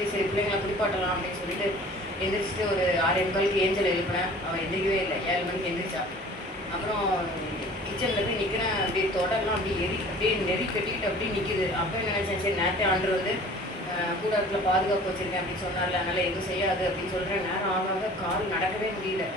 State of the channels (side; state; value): both; normal; correlation 0.46